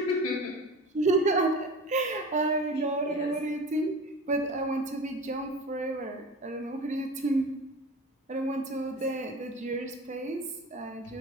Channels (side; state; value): both; normal; correlation 0.34